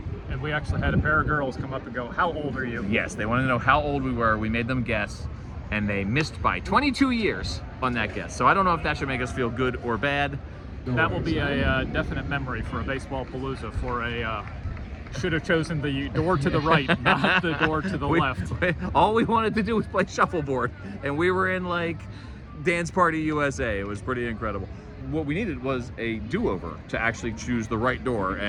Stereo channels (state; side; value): identical; both; correlation 1.00